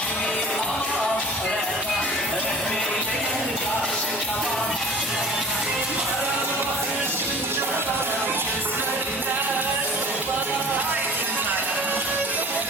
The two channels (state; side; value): normal; both; correlation 0.43